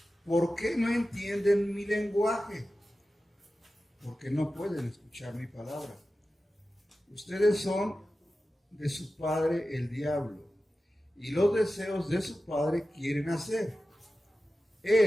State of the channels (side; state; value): both; normal; correlation 0.94